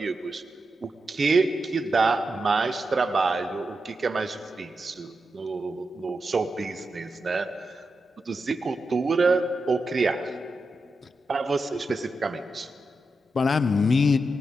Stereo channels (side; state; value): both; normal; correlation 0.88